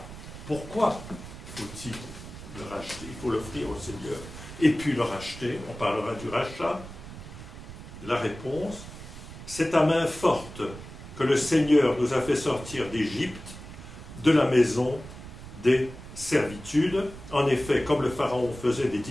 Pourquoi faut-il le racheter? Il faut l'offrir au Seigneur. Et puis le racheter, on parlera du rachat. La réponse, c'est à main forte que le Seigneur nous a fait sortir d'Égypte, de la maison des servitudes. En effet, comme le Pharaon faisait des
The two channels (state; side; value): noise; right; rumble, 13 dB below the sound